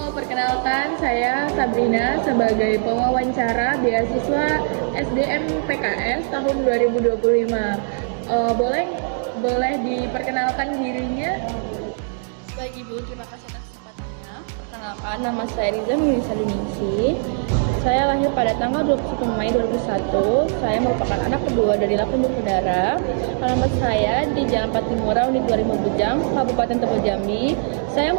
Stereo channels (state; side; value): silent; left; digital silence